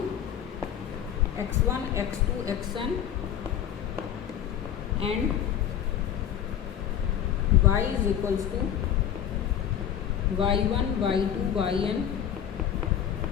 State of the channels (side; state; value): right; quieter; 9.7 dB